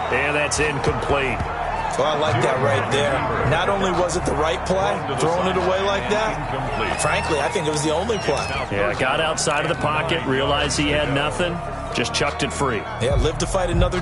And that's incomplete. Well, I like that right there. Not only was it the right play, throwing it away like that, frankly, I think it was the only play. Yeah, got outside of the pocket, realized he had nothing, just chucked it free. Yeah, live to fight another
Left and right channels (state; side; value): identical; both; correlation 1.00